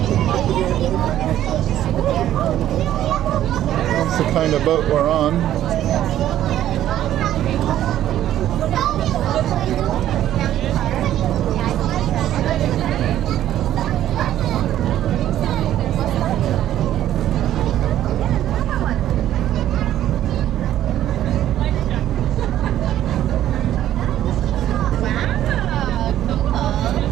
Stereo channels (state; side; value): quieter; left; 12.2 dB